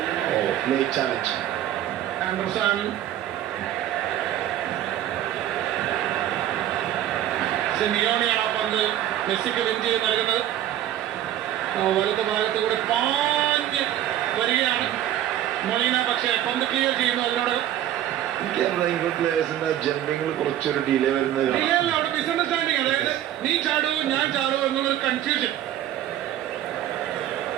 Oh, late challenge. Anderson. സിമിയോണിയാണ് ആ പന്ത് മെസ്സിക്ക് വിൻ ചെയ്ത് നൽകുന്നത്. വലത് ഭാഗത്ത് കൂടെ പാഞ്ഞ് വരികയാണ് മൊളീന, പക്ഷേ പന്ത് ക്ലിയർ ചെയ്യുന്നു. അതിനോട് ഇംഗ്ലണ്ട് പ്ലേയേഴ്സിന്റെ ജമ്പിങ്ങിൽ കുറച്ചൊരു ഡിലേ വരുന്നത് അവിടെ മിസ്അണ്ടർസ്റ്റാൻഡിങ്, അതായത് നീ ചാടൂ ഞാൻ ചാടൂ എന്നുള്ളൊരു കൺഫ്യൂഷൻ.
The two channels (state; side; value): quieter; left; 12.1 dB